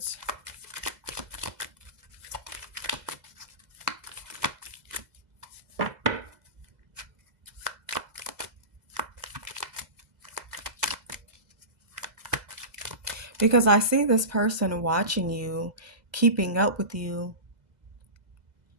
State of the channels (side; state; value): left; late; 2.0 ms